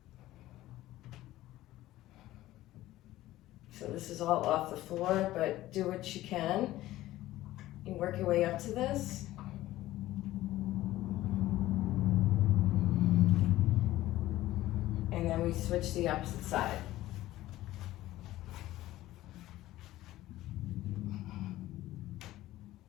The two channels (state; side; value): quieter; right; 15.7 dB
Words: So this is all off the floor, but do what you can. You work your way up to this. And then we switch to the opposite side.